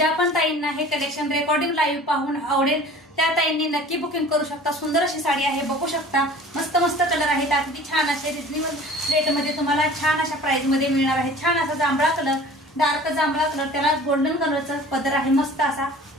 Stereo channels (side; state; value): both; normal; correlation 0.45